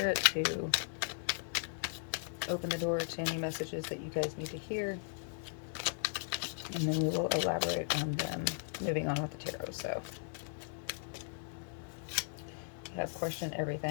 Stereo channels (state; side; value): silent; right; digital silence